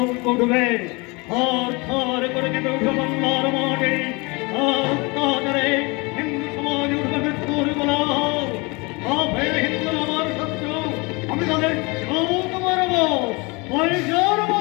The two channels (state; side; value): quieter; right; 27.2 dB